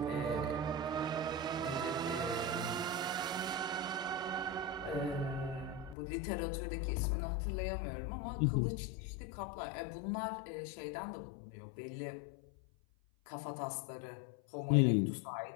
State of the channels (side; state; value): right; drops out; at 6.0 s